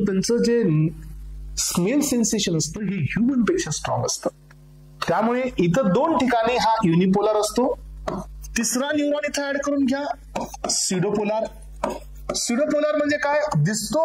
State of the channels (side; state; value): both; identical; correlation 1.00